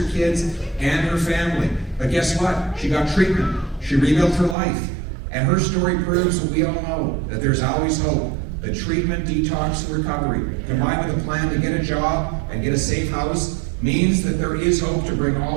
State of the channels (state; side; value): drops out; left; at 4.5 s